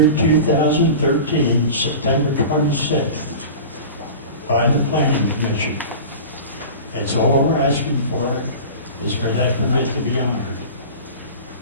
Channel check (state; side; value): inverted; both; correlation -0.35